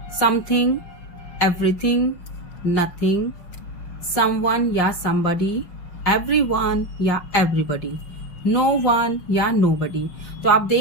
something, everything, nothing, someone या somebody, everyone या everybody, नो वन या nobody. तो आप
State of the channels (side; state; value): right; late; 5.6 ms